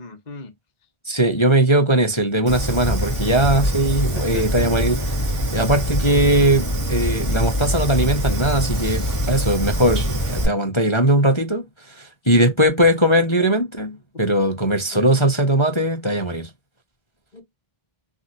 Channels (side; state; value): right; late; 1.3 ms